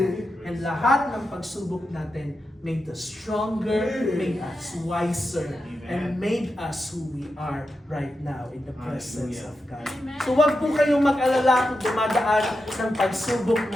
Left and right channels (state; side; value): normal; both; correlation 0.89